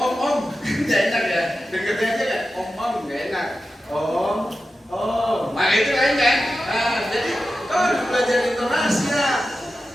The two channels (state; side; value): normal; both; correlation 0.92